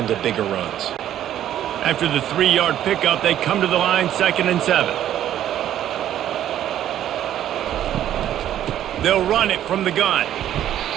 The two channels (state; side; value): quieter; left; 11.5 dB